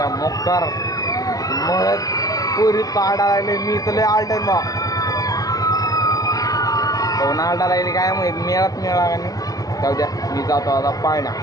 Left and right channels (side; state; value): right; late; 0.17 ms